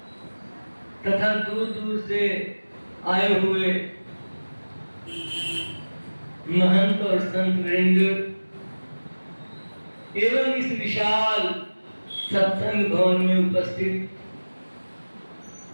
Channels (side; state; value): both; inverted; correlation -1.00